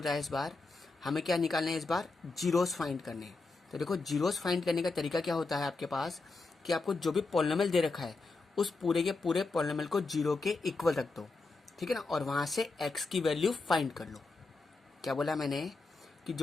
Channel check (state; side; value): quieter; right; 3.7 dB